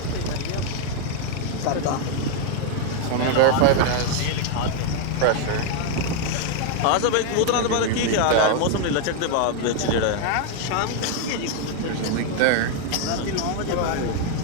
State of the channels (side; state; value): both; different; correlation 0.00